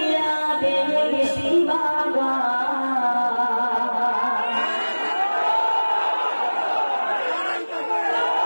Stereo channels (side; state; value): both; inverted; correlation -1.00